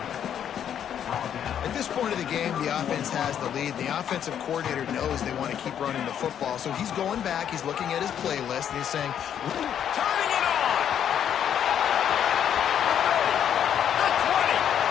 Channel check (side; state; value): right; quieter; 9.3 dB